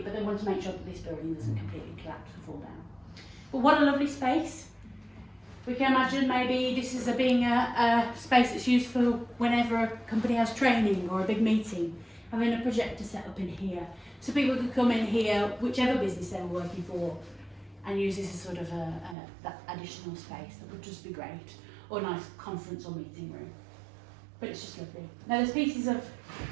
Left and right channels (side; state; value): left; drops out; at 19.2 s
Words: but they want to make sure that this building doesn't completely collapse or fall down. But what a lovely space. We can imagine maybe this is being a space that's used for whenever a company has training or a big meeting, having a projector set up in here. So people could come in here, whichever business they were working for, and use this as sort of that additional space. That would just be great. Or a nice conference or meeting room. But it's just lovely. Now there's pieces of